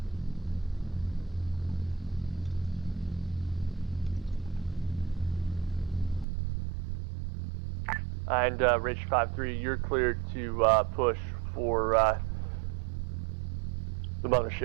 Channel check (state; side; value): drops out; left; at 6.2 s